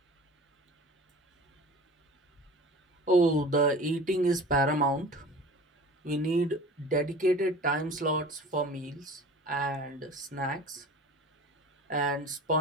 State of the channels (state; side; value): normal; both; correlation 0.40